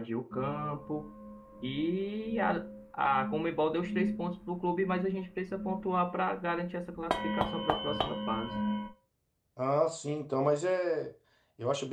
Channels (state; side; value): identical; both; correlation 1.00